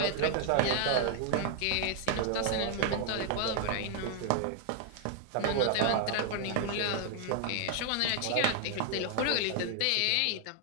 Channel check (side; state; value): both; different; correlation 0.00